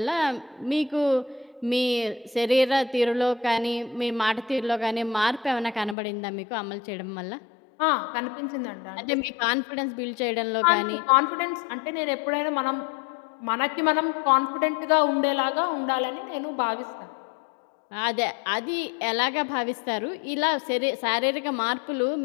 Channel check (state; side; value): drops out; right; at 6.0 s